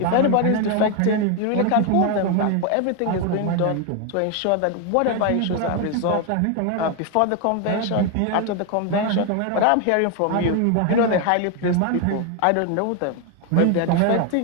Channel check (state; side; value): different; both; correlation 0.01